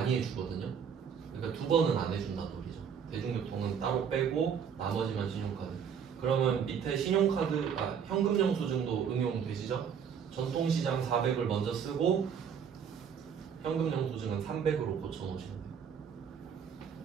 해주거든요. 그러니까 두 번은 안 해준다는 소리죠. 대중교통은 따로 빼고 나머지만 신용카드. 그러면 밑에 신용카드, 현금 영수증도 응용되시죠? 전통시장 400을 먼저 쓰고 현금 영수증은 300으로 고쳐놓으시면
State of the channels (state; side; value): quieter; left; 7.4 dB